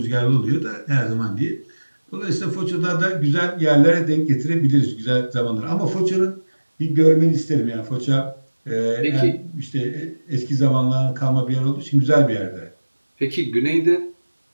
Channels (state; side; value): inverted; both; correlation -1.00